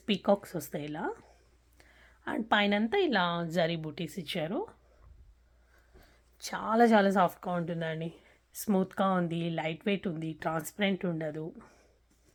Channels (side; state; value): both; identical; correlation 1.00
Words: పీకాక్స్ వస్తాయి ఇలా. అండ్ పైనంతా ఇలా జరీ బూటీస్ ఇచ్చారు. చాలా చాలా సాఫ్ట్గా ఉంటుందండి, స్మూత్గా ఉంది, లైట్ వెయిట్ ఉంది, ట్రాన్స్పరెంట్ ఉండదు.